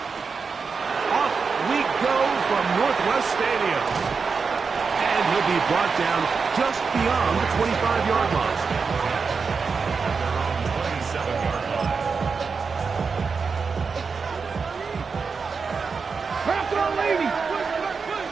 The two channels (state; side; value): quieter; left; 5.2 dB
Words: Off we go from Northwest Stadium. And he'll be brought down just beyond the 25-yard line. Back on, lady.